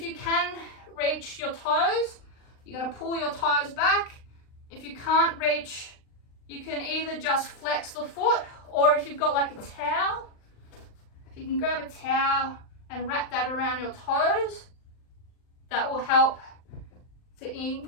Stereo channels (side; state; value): right; late; 39 ms